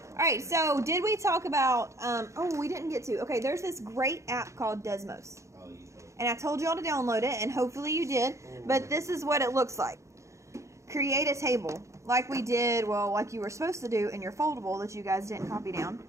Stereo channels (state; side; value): late; left; 0.14 ms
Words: All right, so did we talk about, oh, we didn't get to. Okay, there's this great app called Desmos. Oh, you told. And I told y'all to download it, and hopefully you did. But this is what it looks like. Create a table, like we did, well, like you were supposed to do in your foldable that you guys didn't copy down.